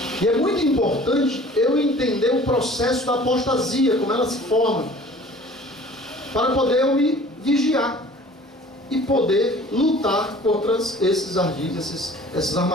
E é muito importante eu entender o processo da apostasia, como ela se forma, para poder eu me vigiar e poder lutar contra esses ardilhos, essas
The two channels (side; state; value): both; normal; correlation 0.48